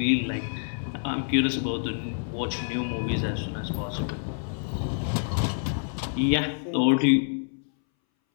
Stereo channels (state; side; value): silent; right; 60 dB below the other